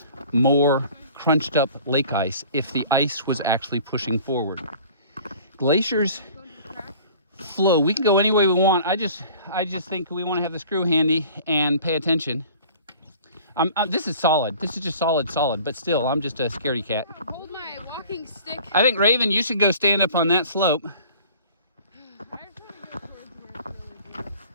more crunched up lake ice if the ice was actually pushing forward. Glaciers flow. We can go any way we want. I just think we want to have the screw handy and pay attention. This is solid. This is just solid, but still, I'm just a scaredy cat. Hold my walking stick. I think, Raven, you should go stand up on that slope.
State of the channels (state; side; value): inverted; both; correlation -0.47